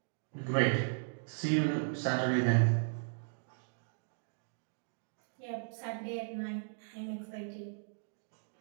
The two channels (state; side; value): silent; left; digital silence